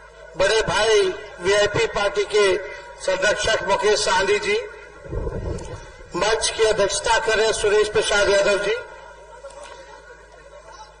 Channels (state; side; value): identical; both; correlation 1.00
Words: बड़े भाई वीआईपी पार्टी के संरक्षक मुकेश साहनी जी, मंच की अध्यक्षता कर रहे सुरेश प्रसाद यादव जी,